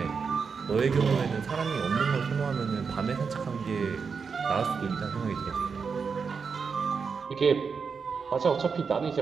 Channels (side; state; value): left; quieter; 5.6 dB